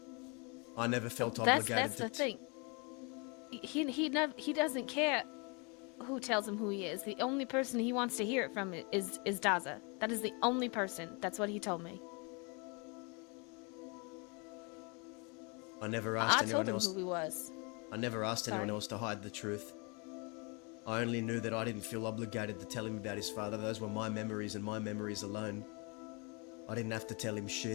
I never felt obligated That's to... the thing. He doesn't care who tells him who he is. The only person he wants to hear it from is Daza. That is the only person. That's what he told me. I never asked I anyone told him else... who he was. I never asked anyone Sorry. else to hide the truth. I only knew that I didn't feel obligated to tell him about his father. Those were my memories and my memories alone. I didn't have to tell him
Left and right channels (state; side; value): quieter; right; 32.2 dB